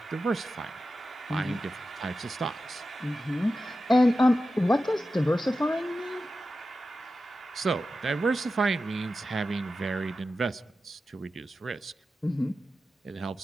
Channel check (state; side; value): normal; both; correlation 0.92